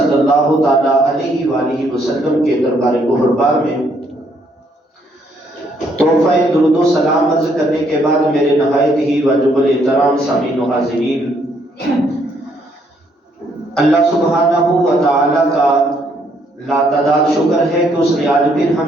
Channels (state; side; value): normal; both; correlation 0.70